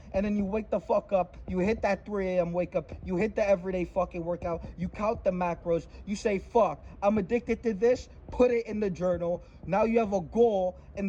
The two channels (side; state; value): both; identical; correlation 1.00